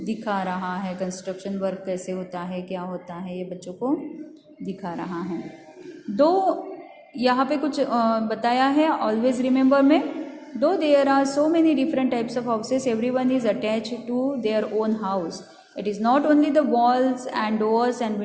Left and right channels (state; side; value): identical; both; correlation 1.00